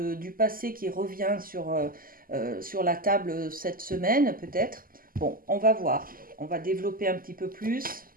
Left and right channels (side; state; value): left; late; 0.42 ms